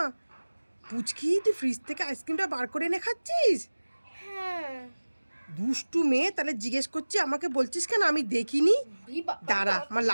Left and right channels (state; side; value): inverted; both; correlation -1.00